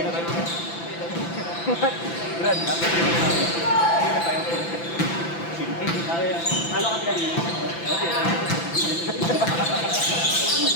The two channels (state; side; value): late; right; 5.9 ms